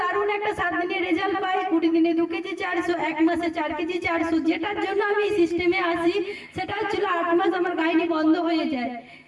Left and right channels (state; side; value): identical; both; correlation 1.00